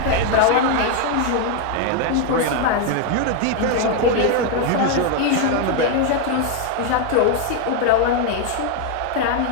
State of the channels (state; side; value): different; both; correlation 0.01